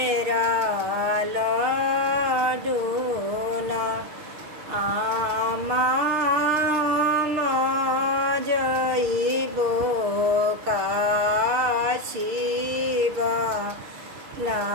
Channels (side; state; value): left; late; 6.7 ms